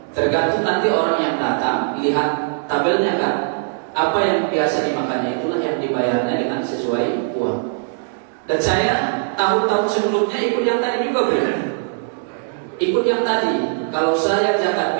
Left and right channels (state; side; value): silent; left; digital silence